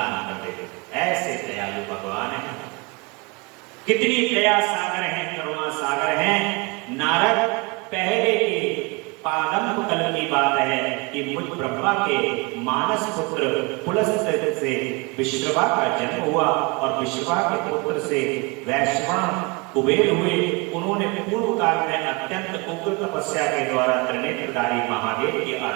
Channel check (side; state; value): left; quieter; 28.2 dB